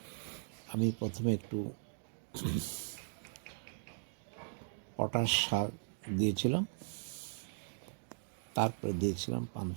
আমি প্রথমে একটু পটাশ সার দিয়েছিলাম, তারপরে দিয়েছিলাম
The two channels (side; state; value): left; silent; digital silence